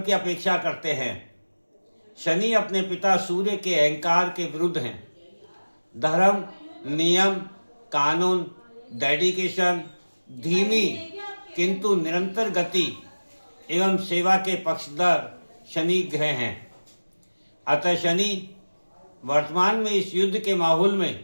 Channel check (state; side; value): inverted; both; correlation -1.00